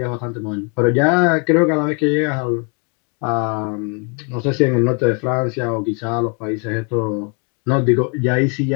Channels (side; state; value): right; quieter; 36.7 dB